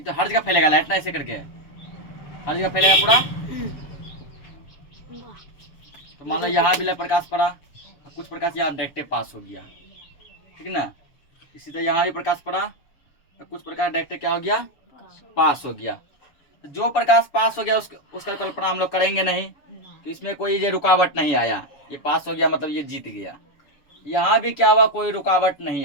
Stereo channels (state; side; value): late; right; 7.0 ms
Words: तो हर जगह फैलेगा लाइट ना, ऐसे करके हर जगह फैलेगा पूरा। वाह, तो मान लो यहाँ भी लाइट प्रकाश पड़ा, कुछ प्रकाश यहाँ डायरेक्ट पास हो गया, ठीक ना। इसी तरह यहाँ भी प्रकाश पड़ा, तो कुछ प्रकाश डायरेक्ट क्या हो गया, पास हो गया। तो जो प्रकाश पास हो गया उसका कल्पना हम लोग करेंगे नहीं, तो इसमें कोई ये रुकावट नहीं आया, ये पास हो गया मतलब ये जीत गया। यहाँ भी क्या हुआ, कोई रुकावट